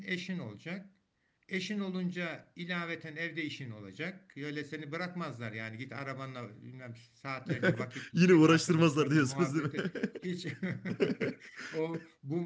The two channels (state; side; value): identical; both; correlation 1.00